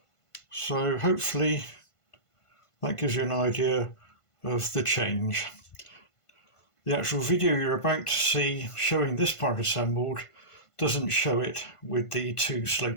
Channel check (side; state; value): right; late; 1.5 ms